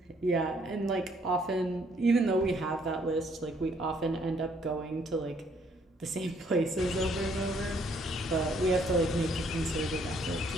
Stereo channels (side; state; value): both; normal; correlation 0.66